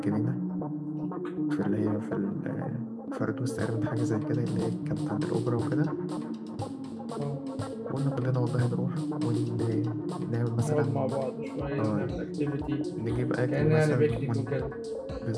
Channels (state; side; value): identical; both; correlation 1.00